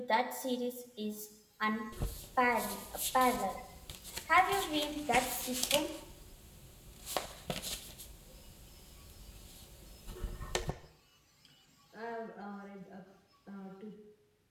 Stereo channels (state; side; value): identical; both; correlation 1.00